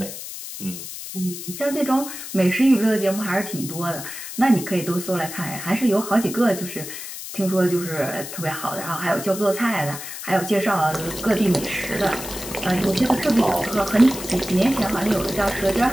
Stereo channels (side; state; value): left; noise; hiss, 10 dB below the sound